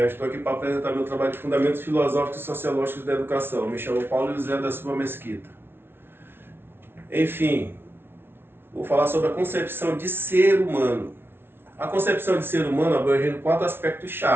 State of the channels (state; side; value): late; left; 0.11 ms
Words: Estou aqui para apresentar meu trabalho de Fundamentos Filosóficos e Sociológicos da Educação. Me chamo Paulo José da Silva Mesquita. Enfim, vou falar sobre a concepção de ser humano. A concepção de ser humano abrange 4 aspectos